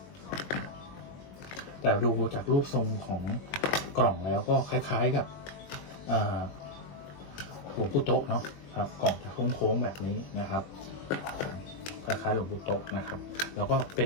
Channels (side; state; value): right; late; 21 ms